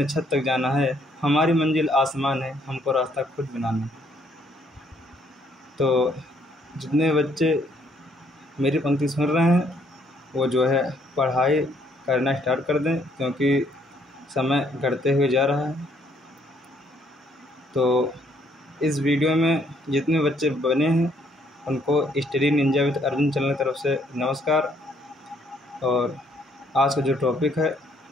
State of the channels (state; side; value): normal; both; correlation 0.68